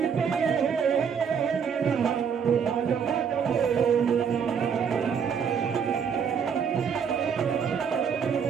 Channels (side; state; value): left; quieter; 7.0 dB